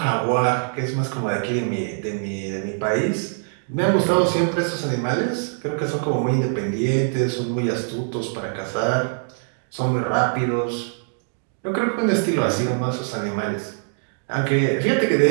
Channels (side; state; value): left; silent; digital silence